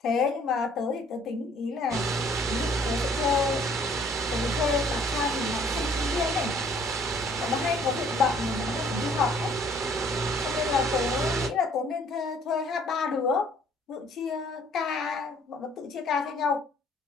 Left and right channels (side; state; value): both; normal; correlation 0.58